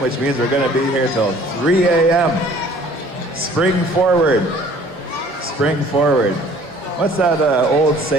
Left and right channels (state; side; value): normal; both; correlation 0.53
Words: which means we're going to be here till 3 a.m. Spring forward. What's that old